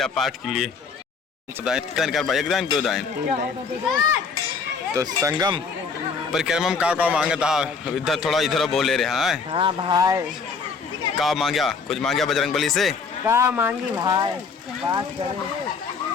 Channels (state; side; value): quieter; right; 5.3 dB